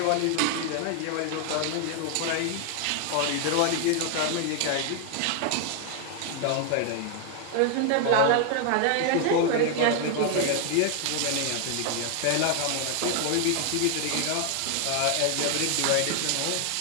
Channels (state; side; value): different; both; correlation 0.00